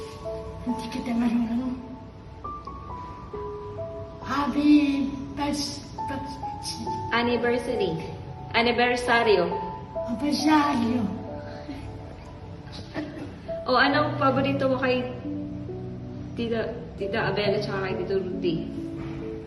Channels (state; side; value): identical; both; correlation 1.00